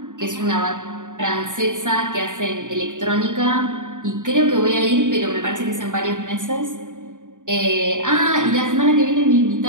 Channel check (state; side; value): late; left; 0.87 ms